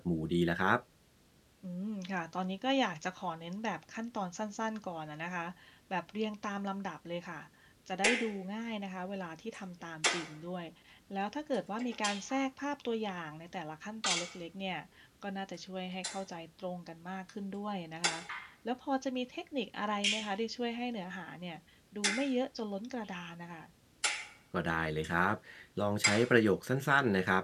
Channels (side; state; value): both; identical; correlation 1.00